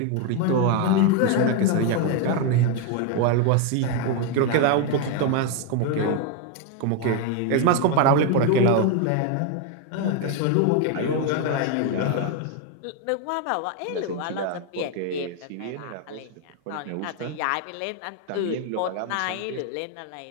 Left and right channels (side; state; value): both; different; correlation 0.01